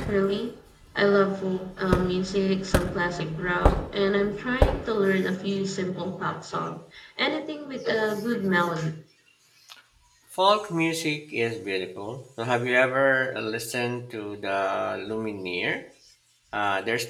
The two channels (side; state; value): both; identical; correlation 1.00